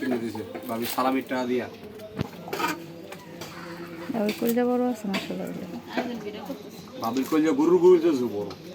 দিয়েছে ভাবি সালামির টাকা দিয়া ওই করে যাব বড় আছে মাশাআল্লাহ ভাবি কইলে গরু গরু যে বড়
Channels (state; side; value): identical; both; correlation 1.00